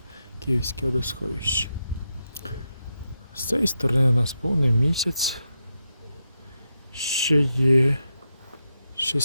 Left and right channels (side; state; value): both; inverted; correlation -0.85